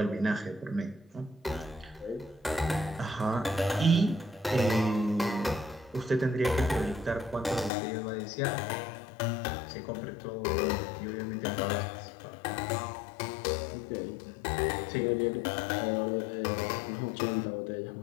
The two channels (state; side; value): drops out; right; at 7.7 s